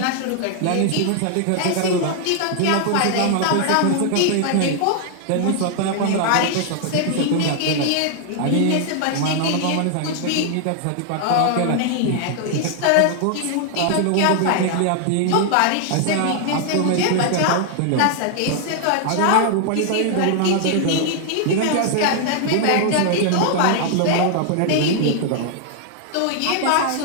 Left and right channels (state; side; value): different; both; correlation 0.00